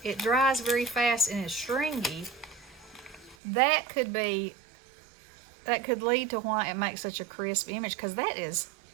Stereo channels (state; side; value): drops out; left; at 3.4 s